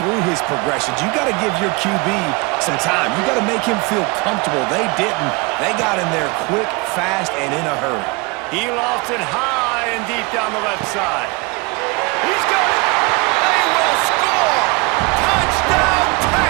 through his progressions. You got to give your QB some time. You got to make him feel comfortable. They didn't. They got in there quick, fast, and in a hurry. He lofts it high and deep down the left side. He's got it. They will score. Touchdown,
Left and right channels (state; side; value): quieter; left; 27.1 dB